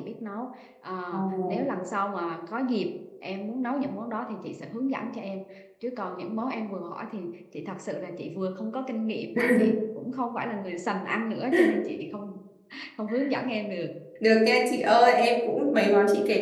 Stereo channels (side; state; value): both; identical; correlation 1.00